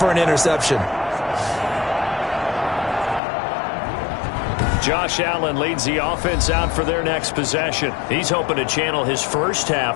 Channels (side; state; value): right; drops out; at 3.2 s